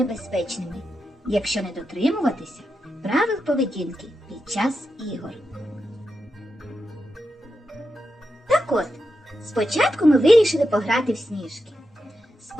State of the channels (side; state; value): both; normal; correlation 0.88